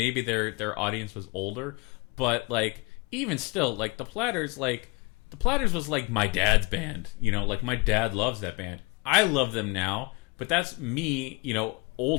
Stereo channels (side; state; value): right; quieter; 27.6 dB